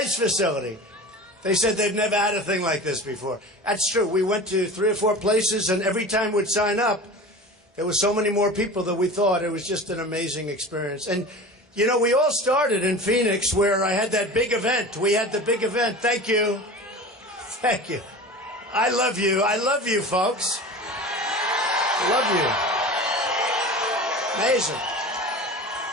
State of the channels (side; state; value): both; normal; correlation 0.34